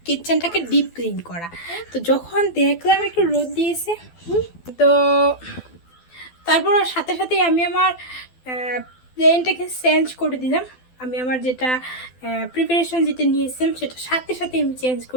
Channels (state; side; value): late; right; 12 ms